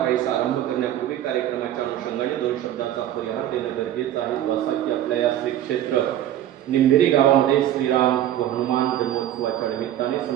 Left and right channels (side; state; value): left; quieter; 12.1 dB